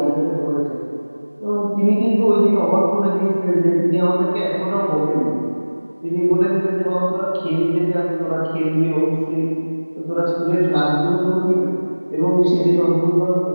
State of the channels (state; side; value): inverted; both; correlation -1.00